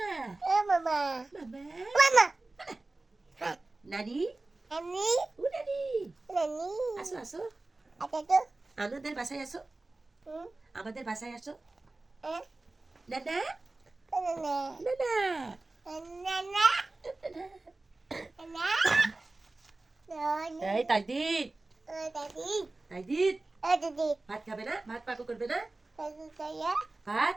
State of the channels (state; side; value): quieter; left; 3.1 dB